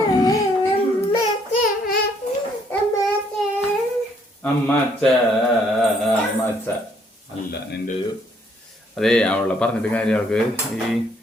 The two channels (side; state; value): both; normal; correlation 0.67